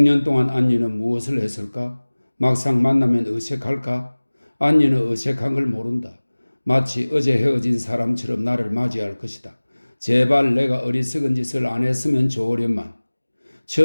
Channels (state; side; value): inverted; both; correlation -1.00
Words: 동안 안니는 무엇을 했을까? 막상 만나면 어색할까? 안니는 어색한 걸 모른다. 마치 어제 헤어진 사람처럼 나를 맞이할 것이다. 제발 내가 어리석은 짓을 안 했으면 좋으련만.